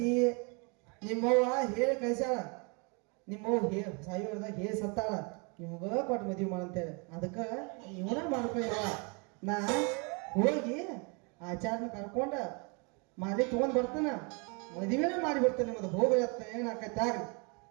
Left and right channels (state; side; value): quieter; left; 33.0 dB